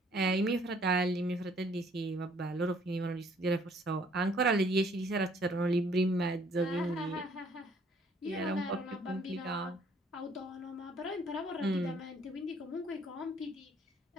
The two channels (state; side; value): normal; both; correlation 0.62